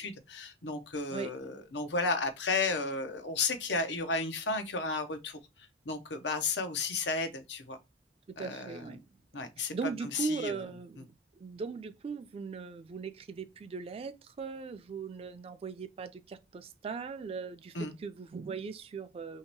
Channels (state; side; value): normal; both; correlation 0.08